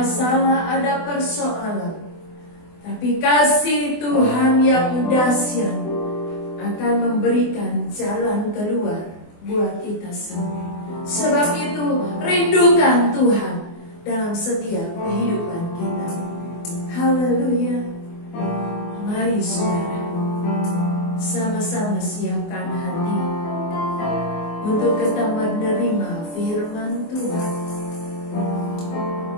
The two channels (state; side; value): late; right; 24 ms